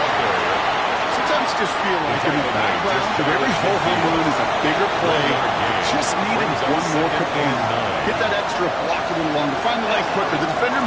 Sometimes just feel like in the background that every ho-hum run is a bigger play. Just needed one more command. Get that extra block a little longer. Find the leg quicker. The defender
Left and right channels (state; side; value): identical; both; correlation 1.00